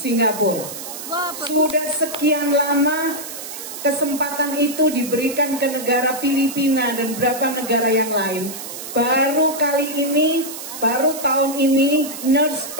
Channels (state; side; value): noise; right; hiss, 10 dB below the sound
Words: Sudah sekian lama kesempatan itu diberikan ke negara Filipina dan beberapa negara yang lain. Baru kali ini, baru tahun ini nurse